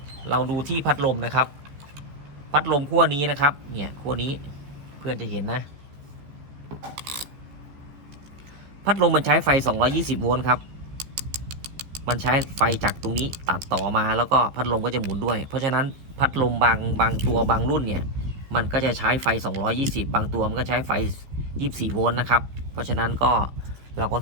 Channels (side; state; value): left; late; 15 ms